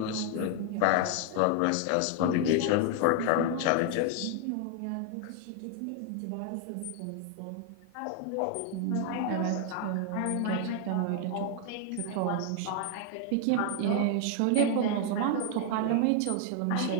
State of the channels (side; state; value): both; different; correlation 0.00